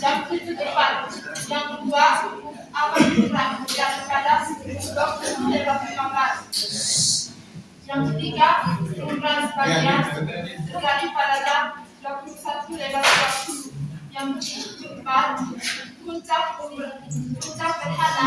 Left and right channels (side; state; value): both; identical; correlation 1.00